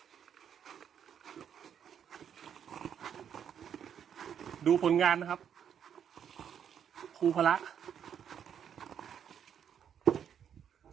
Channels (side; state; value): left; quieter; 8.5 dB